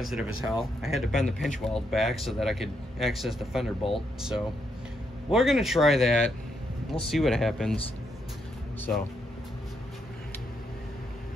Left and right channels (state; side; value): normal; both; correlation 0.78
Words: as hell. I had to bend the pinch weld back so that I could access the fender bolt. So we're gonna try that. We'll see what happens. So,